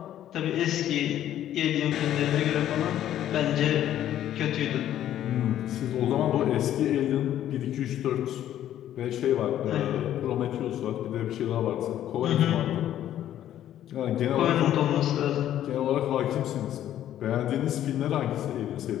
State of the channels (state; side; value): quieter; right; 11.7 dB